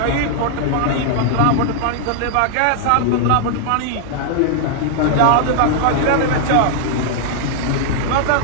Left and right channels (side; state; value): both; different; correlation 0.00